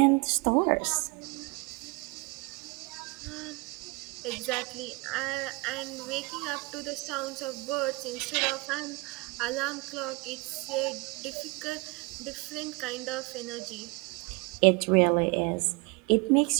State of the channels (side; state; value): left; quieter; 25.5 dB